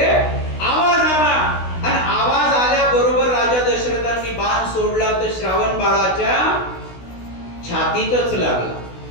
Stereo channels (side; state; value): right; late; 16 ms